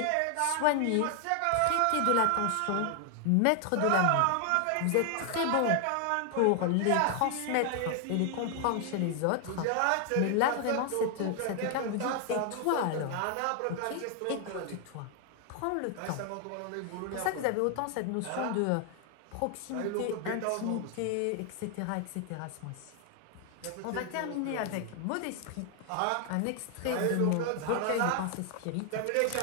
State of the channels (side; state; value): both; different; correlation 0.00